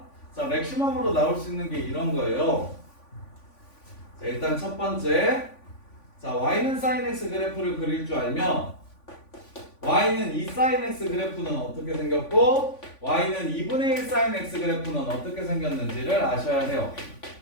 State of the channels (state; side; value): late; right; 3.5 ms